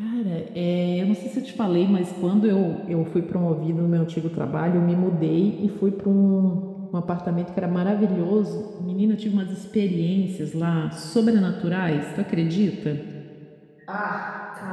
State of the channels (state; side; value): identical; both; correlation 1.00